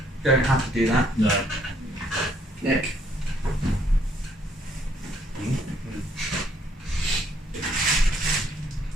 don't have to do that. No. Nick.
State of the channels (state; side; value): normal; both; correlation 0.67